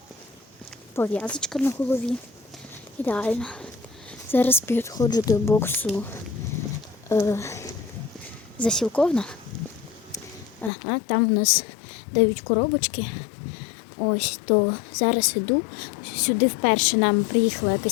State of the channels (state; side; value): drops out; right; at 10.7 s